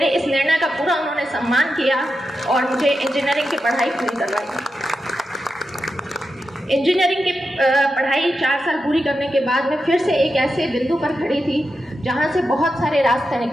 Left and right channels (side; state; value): both; normal; correlation 0.89